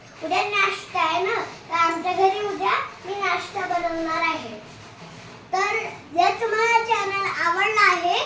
आहे ना, तर आमच्या घरी उद्या मी नाश्ता बनवणार आहे. तर जर तुम्हाला चॅनल आवडला आहे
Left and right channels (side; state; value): both; identical; correlation 1.00